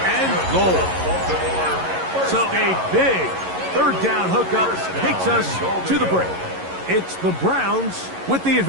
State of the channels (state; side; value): late; left; 11 ms